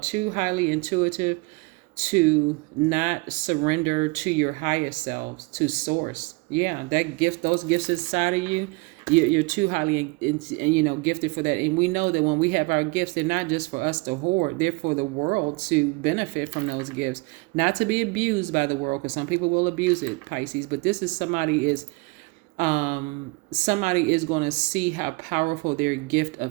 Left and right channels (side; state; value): left; quieter; 27.3 dB